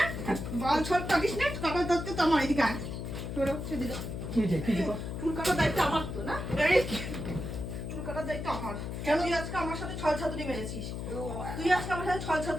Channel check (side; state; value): left; noise; hum, 6 dB below the sound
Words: বাল ছল কাটিস না, কপাল ধরতে তো আমার এদিকে আয়। সরো, সেদিকে। কি যে কি যে চুল কাটার দায়িত্ব আমার তো না, এই চুল কাটার দায়িত্ব আমার। কেন তুই আজকে আমার সাথে ছল ছাতুরি মেরেছিস? তুই আজকে আমার সাথে ছল